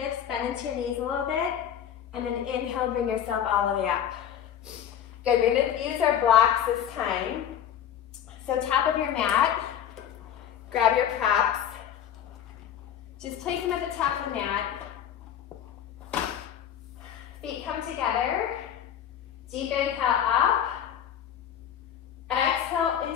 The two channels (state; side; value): quieter; right; 9.6 dB